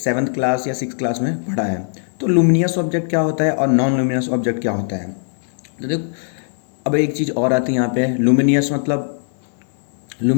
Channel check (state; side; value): silent; right; digital silence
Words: क्लास या 6th क्लास में पढ़ा है। तो लुमिनियस ऑब्जेक्ट क्या होता है और नॉन लुमिनियस ऑब्जेक्ट क्या होता है। तो देखो, अब एक चीज़ और आती है यहाँ पे। लुमिनियस मतलब